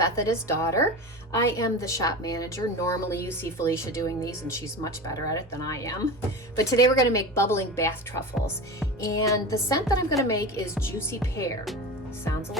his daughter. I am the shop manager. Normally you see Felicia doing these and she's much better at it than I am. But today we're going to make bubbling bath truffles. And the scent that I'm going to make is juicy pear. Sounds a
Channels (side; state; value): both; normal; correlation 0.27